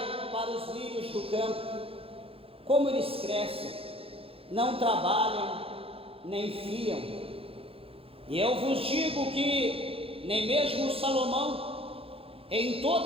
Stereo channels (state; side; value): late; left; 0.27 ms